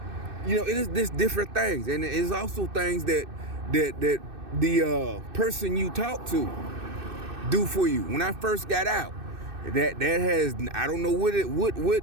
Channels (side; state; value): left; late; 2.6 ms